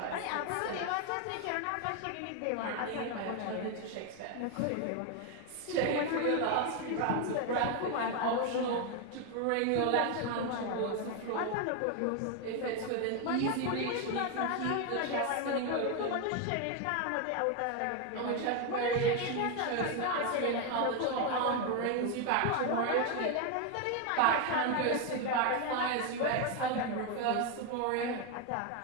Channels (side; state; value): both; different; correlation 0.01